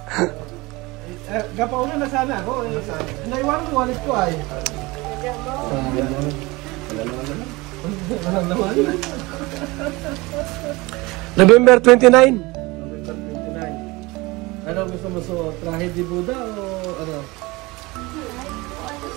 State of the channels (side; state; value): left; quieter; 22.9 dB